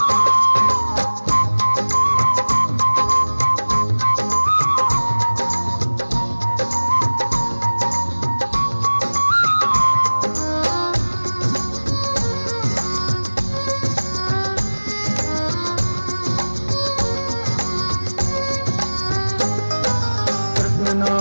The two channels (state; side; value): inverted; both; correlation -1.00